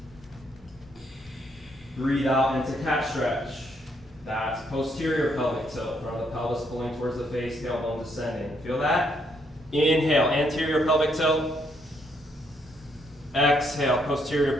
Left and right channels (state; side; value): normal; both; correlation 0.73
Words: Breathe out into cat stretch. That's posterior pelvic tilt. Front of the pelvis pulling towards the face, tailbone descending. Feel that? Inhale, anterior pelvic tilt. Exhale,